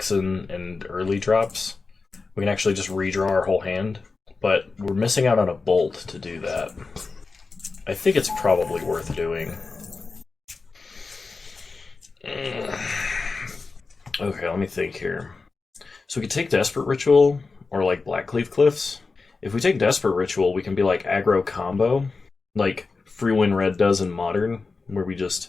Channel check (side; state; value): right; quieter; 4.2 dB